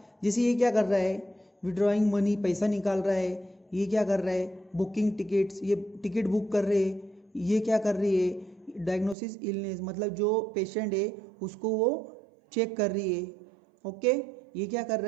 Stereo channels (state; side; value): drops out; left; at 9.2 s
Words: जैसे ये क्या कर रहा है, विड्रॉइंग मनी, पैसा निकाल रहा है, ये क्या कर रहा है, बुकिंग टिकट्स, ये टिकट बुक कर रहे हैं, ये क्या कर रही है, डायग्नोसिस इलनेस, मतलब जो पेशेंट है उसको वो चेक कर रही है। ओके, ये क्या कर